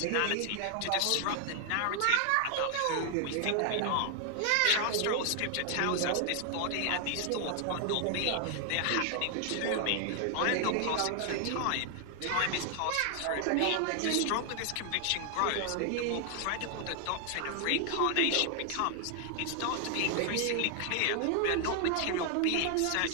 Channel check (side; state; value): both; different; correlation 0.00